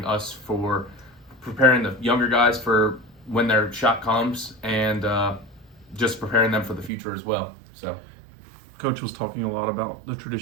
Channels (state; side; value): drops out; left; at 6.9 s